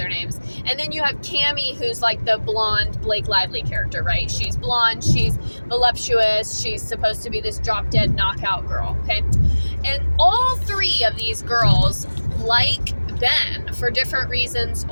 names. And then you have Cammie, who's like the blonde Blake Lively character, right? She's blonde, she's voluptuous, she's supposed to be this drop-dead knockout girl, okay? And all three of these girls like Ben for different reasons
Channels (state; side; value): inverted; both; correlation -1.00